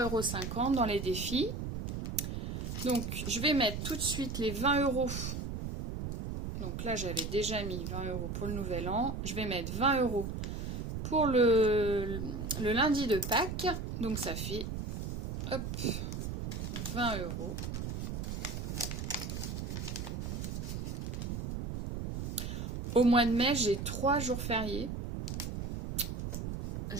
€ dans les défis. Donc, je vais mettre tout de suite les 20 €. Donc là, j'avais déjà mis 20 € pour le nouvel an. Je vais mettre 20 € pour le lundi de Pâques. Donc ça fait, hop, 20 €. Au mois de mai, j'ai 3 jours fériés.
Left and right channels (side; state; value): right; noise; rumble, 4 dB below the sound